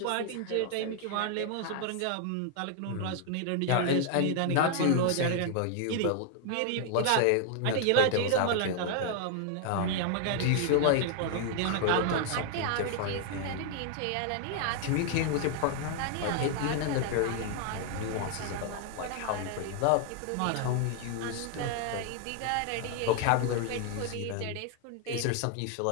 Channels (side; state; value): both; different; correlation 0.00